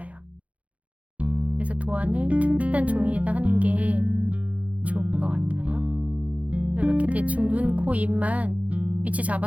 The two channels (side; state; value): left; late; 0.067 ms